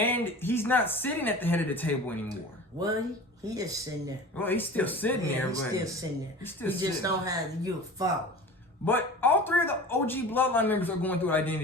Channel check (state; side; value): normal; both; correlation 0.37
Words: he's not sitting at the head of the table anymore. Well, he is sitting there. Well, he's still sitting there. He's but still sitting there. He just don't have the Fowler. But all three of the OG Bloodline members are going through an